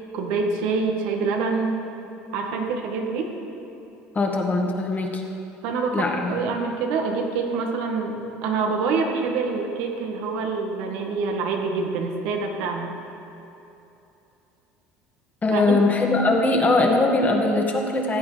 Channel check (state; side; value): normal; both; correlation 0.50